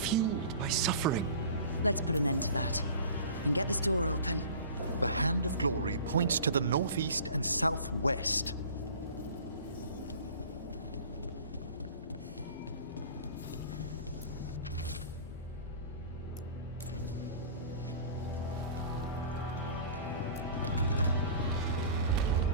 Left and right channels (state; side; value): inverted; both; correlation -0.41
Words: by suffering. Let's put an end to that. And get this door open. The hand of glory points to the northeast and southwest.